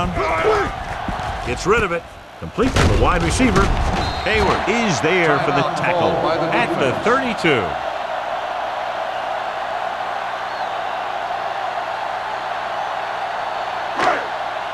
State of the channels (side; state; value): both; identical; correlation 1.00